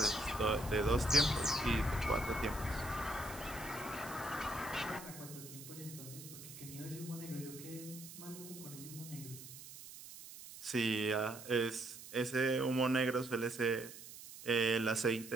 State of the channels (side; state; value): right; noise; hiss, 14 dB below the sound